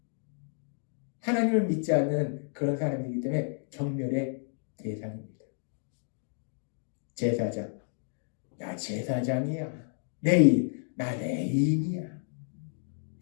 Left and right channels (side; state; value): right; silent; digital silence